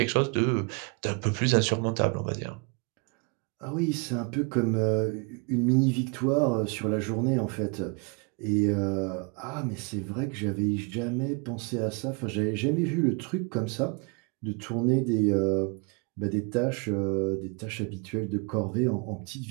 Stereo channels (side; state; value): left; quieter; 32.7 dB